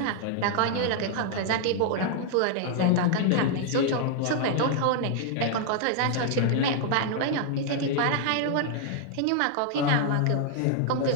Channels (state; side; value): different; both; correlation 0.00